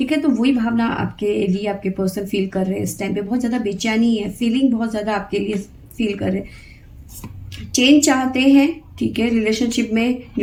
है। तो वही भावना आपके लिए आपके पर्सन फील कर रहे हैं इस टाइम पे। बहुत ज़्यादा बेचैनी है, फीलिंग बहुत ज़्यादा आपके लिए फील कर रहे हैं। चेंज चाहते हैं, ठीक है। रिलेशनशिप में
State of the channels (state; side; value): identical; both; correlation 1.00